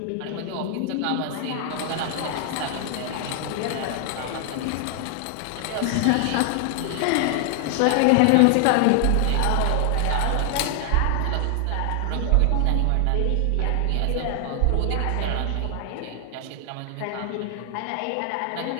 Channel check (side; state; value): both; different; correlation 0.00